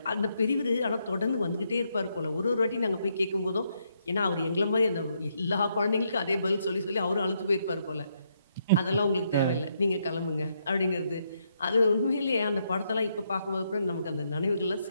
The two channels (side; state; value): both; inverted; correlation -0.77